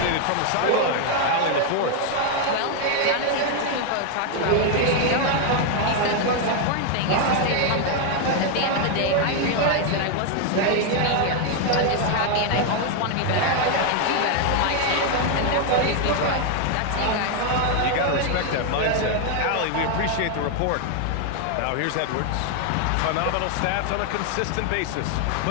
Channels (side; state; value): both; different; correlation 0.01